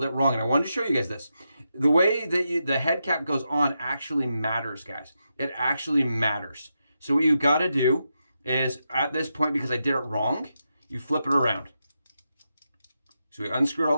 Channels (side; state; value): both; inverted; correlation -0.86